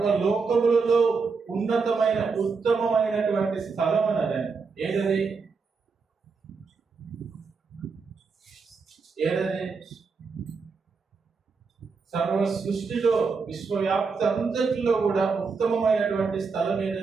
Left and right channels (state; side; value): quieter; left; 4.9 dB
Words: ఉన్నతమైన ఉత్తమమైనటువంటి స్థలం అన్నది ఏదది? సర్వ సృష్టిలో, విశ్వవ్యాప్తి అంతటిలో కూడా ఉత్తమమైనటువంటి స్థలం